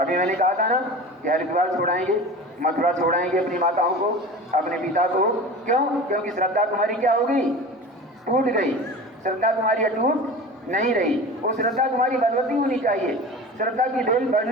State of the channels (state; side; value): normal; both; correlation 0.35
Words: मैंने कहा था ना कि हरिद्वार छोड़ाएंगे, मथुरा छोड़ाएंगे अपनी माताओं को, अपने पिता को। क्यों? क्योंकि श्रद्धा तुम्हारी क्या हो गई? टूट गई। श्रद्धा तुम्हारी अटूट नहीं रही। वो श्रद्धा तुम्हारी बलवती होनी चाहिए, श्रद्धा की बेल